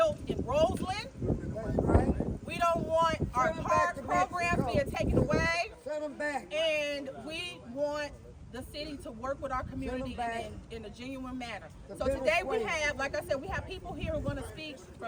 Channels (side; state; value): both; identical; correlation 1.00